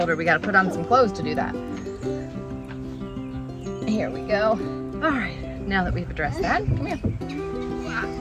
her we got to put on some clothes to do that. Here we go. All right. Now that we've addressed that, come here.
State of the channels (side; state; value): both; identical; correlation 1.00